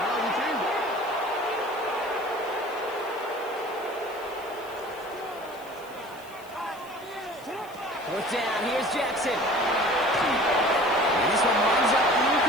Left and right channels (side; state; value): left; noise; hiss, 23 dB below the sound